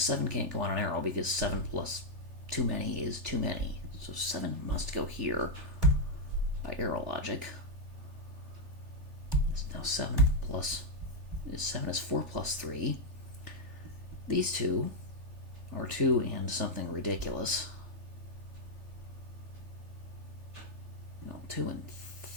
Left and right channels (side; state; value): left; late; 3.4 ms